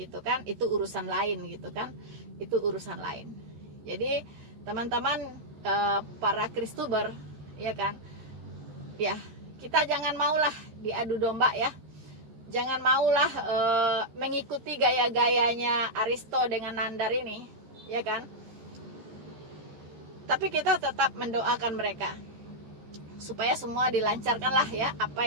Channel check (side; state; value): left; late; 13 ms